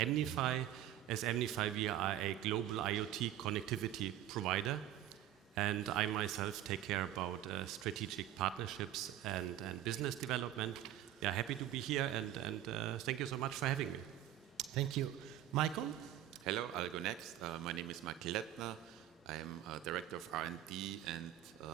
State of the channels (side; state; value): left; quieter; 12.2 dB